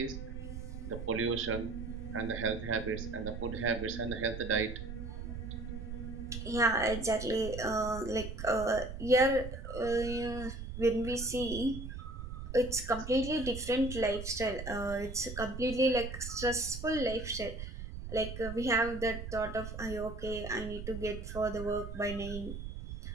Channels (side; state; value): right; noise; rumble, 8 dB below the sound